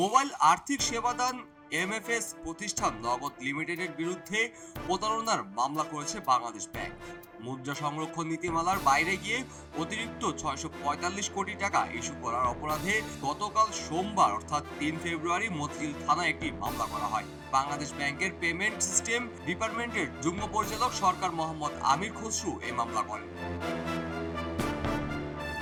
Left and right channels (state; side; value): identical; both; correlation 1.00